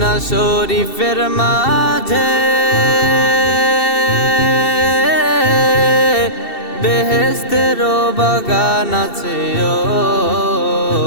শরীফের মাঝে বেহেশতের বাগান আছে ও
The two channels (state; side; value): late; right; 2.7 ms